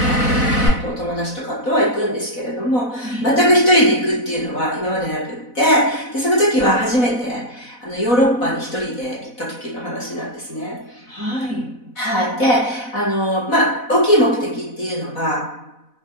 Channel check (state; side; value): late; right; 4.0 ms